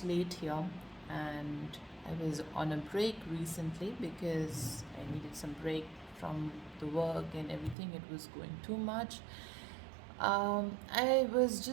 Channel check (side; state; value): left; drops out; at 7.8 s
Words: late here, and I was on a break recently because I needed some break from the work and everything. It was going too much. I was